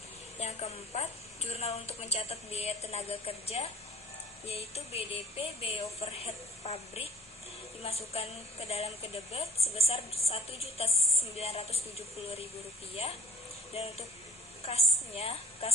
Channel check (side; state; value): both; normal; correlation 0.53